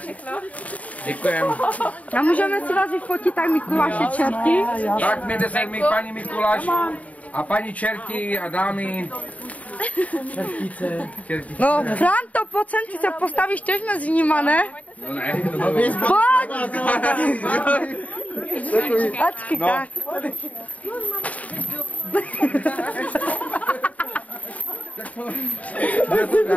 Děkujem. A můžeme si vás vyfotit tak Mikuláše čerty? Tak mějte se mi paní Mikuláš a paní čerti a dámy. Čertice. No, Franto, pojď sem, ty se postavíš tež mezi nima, ne? No ne, Pojď! Ačky, No. tak.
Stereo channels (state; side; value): late; right; 0.069 ms